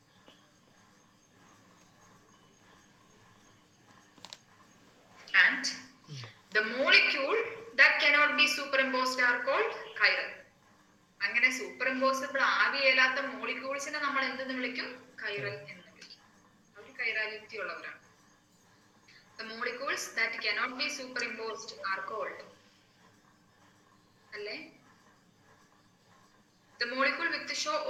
And the molecule that cannot be superimposed are called chiral. അങ്ങനെ സൂപ്പർ ഇമ്പോസിബിൾ ആവിയല്ലാത്ത മോളിക്യൂൾസിനെ നമ്മൾ എന്തെന്ന് വിളിക്കും? കൈറൽ എന്ന് വിളിക്കും. അവർ കൈറാലിറ്റി ഉള്ളവരാണ്. The molecules that cannot be superimposed are called, അല്ലേ? The molecule with show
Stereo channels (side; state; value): both; identical; correlation 1.00